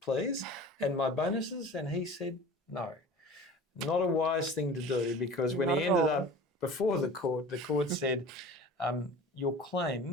please, and my bonuses." And he said, no. Not a wise thing to do, because when he ended up before the court said, your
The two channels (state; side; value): normal; both; correlation 0.40